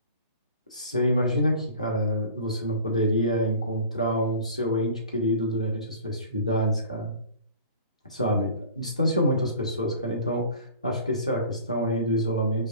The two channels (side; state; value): both; inverted; correlation -0.43